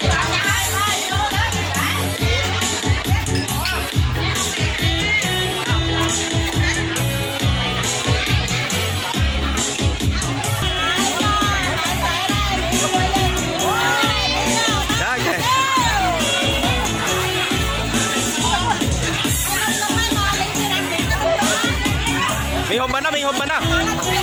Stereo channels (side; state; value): both; identical; correlation 1.00